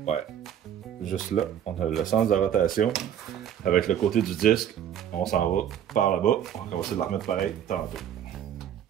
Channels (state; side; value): quieter; left; 9.8 dB